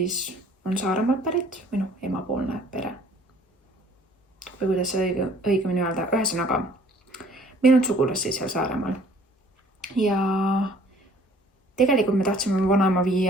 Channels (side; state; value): both; normal; correlation 0.55